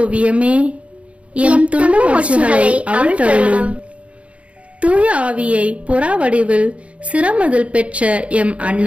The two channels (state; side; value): late; left; 0.064 ms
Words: எம் துன்ப முடிச்சுகளை அவிழ்த்தருளும். தூய ஆவியை புறா வடிவில் சிரமதில் பெற்ற எம்